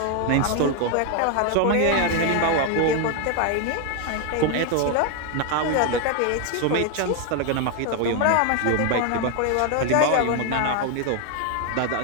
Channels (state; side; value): different; both; correlation 0.01